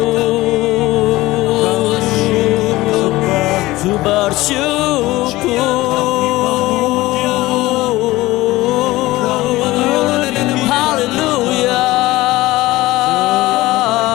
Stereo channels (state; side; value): quieter; right; 18.4 dB